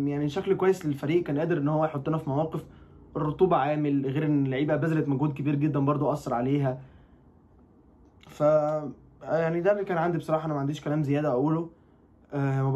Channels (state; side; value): identical; both; correlation 1.00